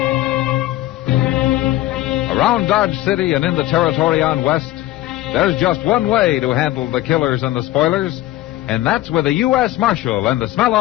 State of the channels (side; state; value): right; quieter; 15.7 dB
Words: Around Dodge City and in the territory on West, there's just one way to handle the killers and the spoilers, and that's with a U.S. Marshal and the smell